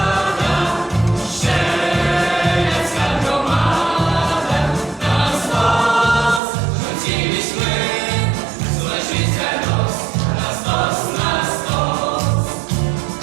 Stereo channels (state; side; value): drops out; left; at 6.4 s